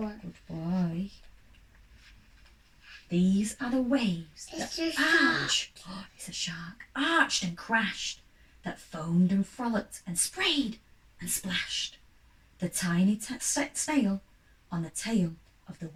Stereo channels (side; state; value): both; identical; correlation 1.00